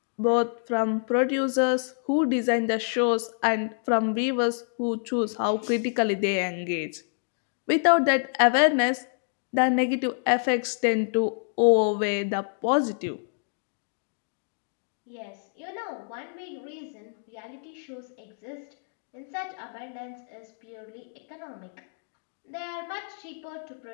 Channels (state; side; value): silent; right; digital silence